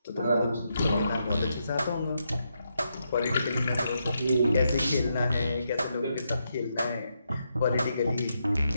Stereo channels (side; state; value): both; inverted; correlation -0.82